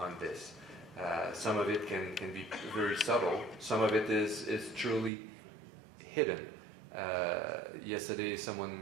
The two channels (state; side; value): drops out; left; at 5.1 s